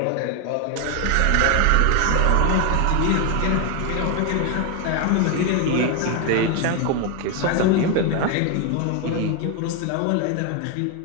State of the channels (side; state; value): both; different; correlation 0.01